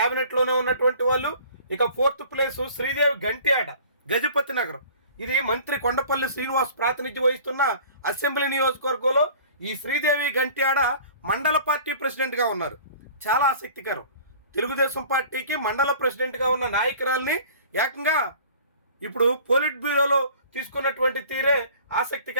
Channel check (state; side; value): inverted; both; correlation -0.47